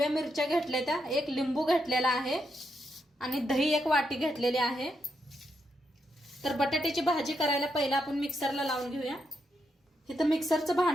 मिरच्या घेतल्या त्या, एक लिंबू घेतलेला आहे आणि दही 1 वाटी घेतलेली आहे। तर बटाट्याची भाजी करायला पहिला आपण मिक्सरला लावून घेऊया। इथं मिक्सरचं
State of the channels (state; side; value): normal; both; correlation 0.82